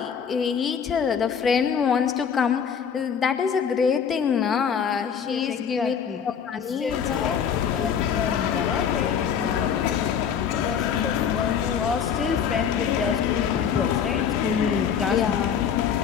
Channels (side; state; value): right; quieter; 7.5 dB